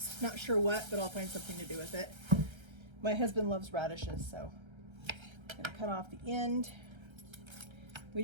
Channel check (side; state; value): left; late; 1.3 ms